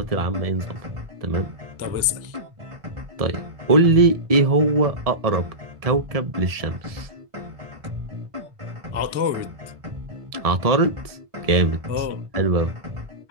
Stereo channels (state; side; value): late; left; 1.7 ms